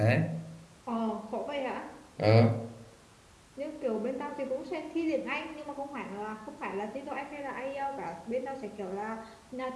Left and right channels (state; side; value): identical; both; correlation 1.00